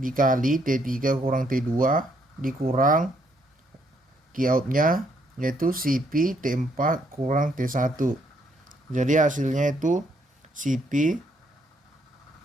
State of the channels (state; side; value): normal; both; correlation 0.71